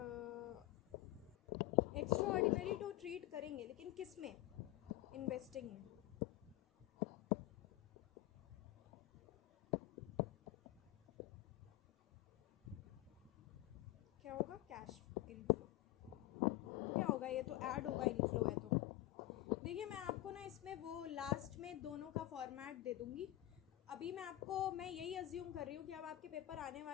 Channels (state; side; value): quieter; right; 16.2 dB